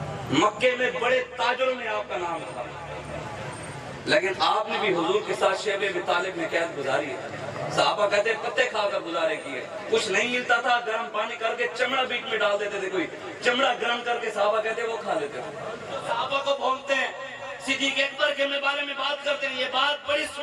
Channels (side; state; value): both; identical; correlation 1.00